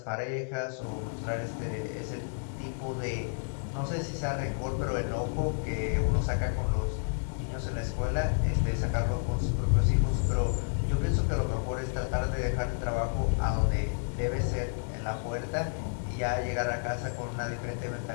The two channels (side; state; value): right; silent; 57 dB below the other